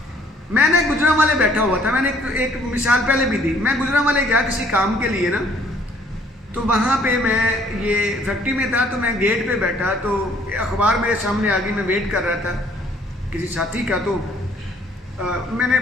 मैंने गुजरांवाले बैठा हुआ था, मैंने एक मिसाल पहले भी दी। मैं गुजरांवाले गया किसी काम के लिए ना, तो वहाँ पे मैं ये फैक्ट्री में था, तो मैं गेट पे बैठा, तो अखबार मेरे सामने आ गई, मैं वेट कर रहा था किसी साथी का। तो मैंने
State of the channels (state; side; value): normal; both; correlation 0.61